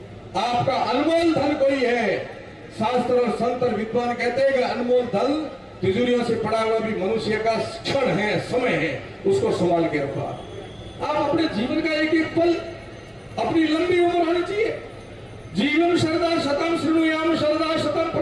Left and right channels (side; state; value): both; identical; correlation 1.00